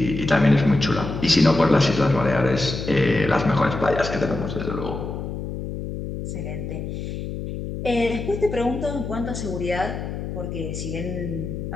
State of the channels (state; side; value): noise; left; hum, 6 dB below the sound